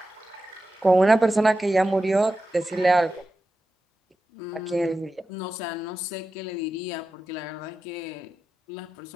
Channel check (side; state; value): both; normal; correlation 0.92